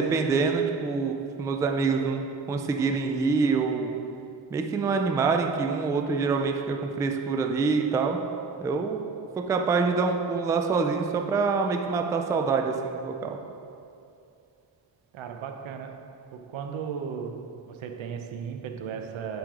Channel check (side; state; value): left; quieter; 4.4 dB